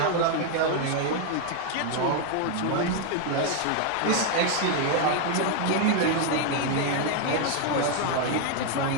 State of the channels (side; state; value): both; different; correlation 0.01